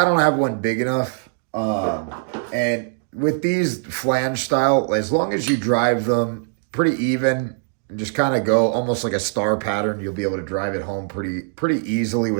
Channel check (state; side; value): silent; left; digital silence